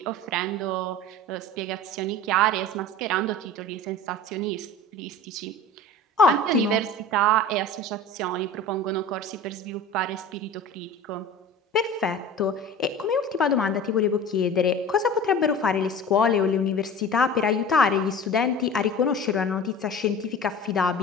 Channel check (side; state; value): both; normal; correlation 0.37